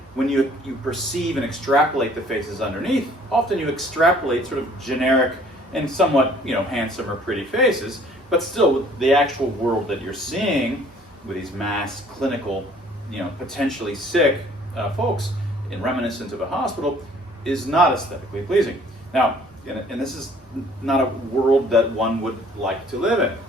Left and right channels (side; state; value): both; normal; correlation 0.56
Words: when you perceive and extrapolate the faces underneath, often you extrapolate sort of generic and somewhat, handsome or pretty faces, but still the actual world that you're seeing with these masked, clinical, potentially sick folks in reminiscent of a hospital is not aesthetically pleasing. Now, and this is not a world that one would like to live in.